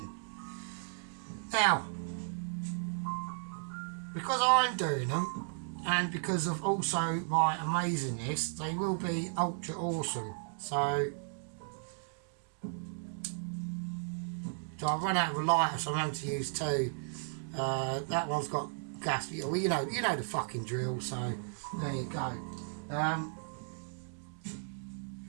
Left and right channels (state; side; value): silent; left; digital silence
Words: Now, because I'm doing them, and because of also my amazingness, they will be ultra awesome. So I've run out of a lighter, so I'm having to use two. That one's got gas. Well, you know the fucking drill. So there you go.